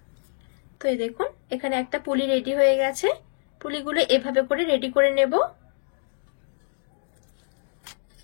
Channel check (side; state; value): right; silent; digital silence